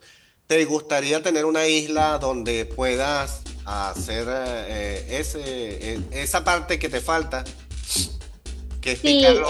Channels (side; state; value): both; identical; correlation 1.00